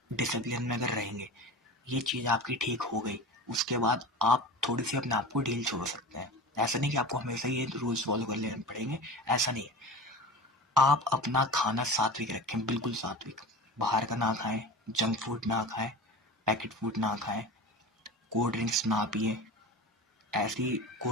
डिसिप्लिन में अगर रहेंगे, ये चीज़ आपकी ठीक हो गई, उसके बाद आप थोड़ी सी अपने आप को ढील छोड़ सकते हैं। ऐसा नहीं कि आपको हमेशा ये रूल्स फॉलो कर लेने पड़ेंगे, ऐसा नहीं है। आप अपना खाना सात्विक रखें, बिल्कुल सात्विक। बाहर का ना खाएं, जंक फूड ना खाएं, पैकेट फूड ना खाएं, कोल्ड ड्रिंक्स ना पिए, ऐसी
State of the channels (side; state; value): both; normal; correlation 0.32